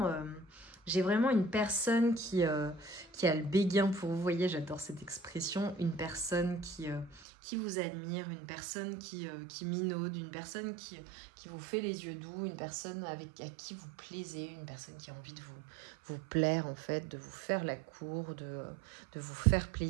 une personne qui a le béguin pour vous. Vous voyez, j'adore cette expression. Une personne qui vous admire, une personne qui minaude, une personne qui vous fait les yeux doux, une personne à qui vous plaisez, une personne qui a envie de vous plaire en fait, de vous faire la cour, de vous faire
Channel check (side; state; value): left; drops out; at 7.2 s